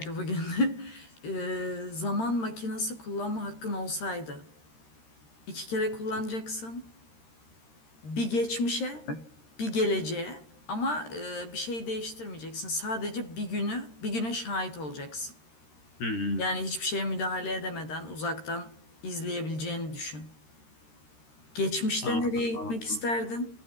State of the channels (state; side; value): late; right; 13 ms